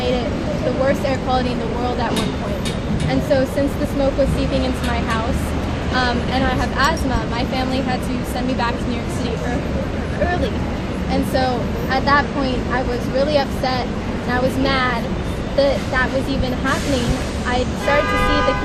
it the worst air quality in the world at one point. And so since the smoke was seeping into my house, and I have asthma, my family had to send me back to New York City early. And so at that point, I was really upset, and I was mad that that was even happening. I started to see the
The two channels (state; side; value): identical; both; correlation 1.00